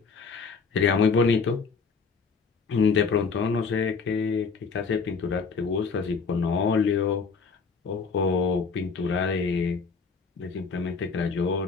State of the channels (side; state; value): right; quieter; 5.1 dB